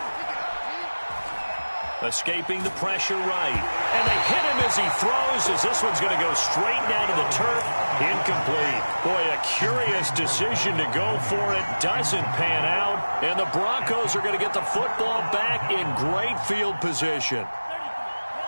Escaping the pressure right. And they hit him as he throws, as this one's going to go straight down to the turf. Incomplete. Boy, a curious decision to go for it. Doesn't pan out. And the Broncos are going to get the football back in great field position.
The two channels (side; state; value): both; inverted; correlation -1.00